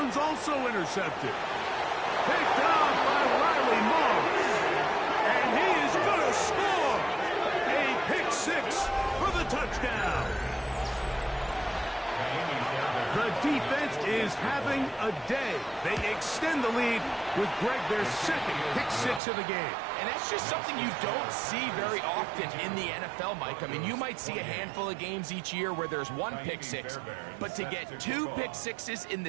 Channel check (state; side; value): drops out; left; at 19.2 s